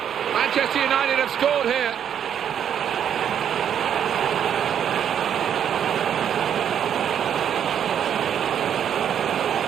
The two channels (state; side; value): quieter; left; 9.0 dB